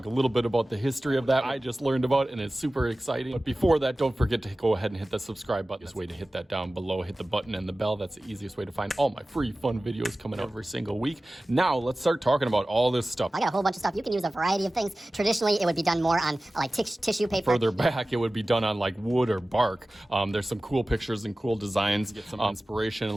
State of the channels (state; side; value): normal; both; correlation 0.96